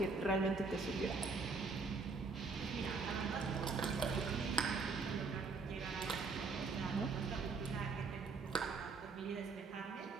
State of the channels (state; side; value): quieter; left; 4.3 dB